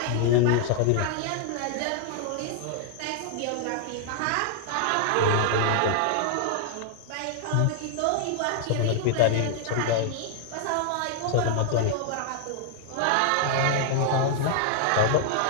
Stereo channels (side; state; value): both; different; correlation 0.00